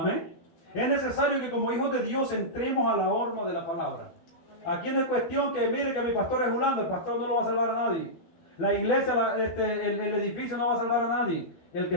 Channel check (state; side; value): late; right; 12 ms